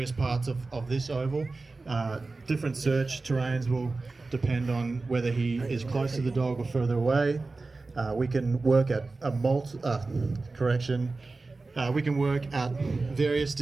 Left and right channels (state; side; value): quieter; left; 3.6 dB